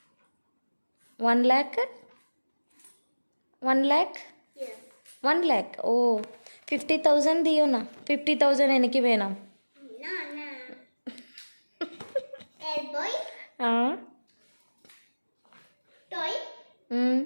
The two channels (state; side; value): inverted; both; correlation -1.00